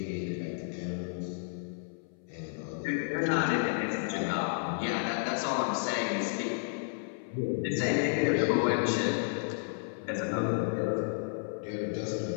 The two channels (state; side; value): silent; right; 57 dB below the other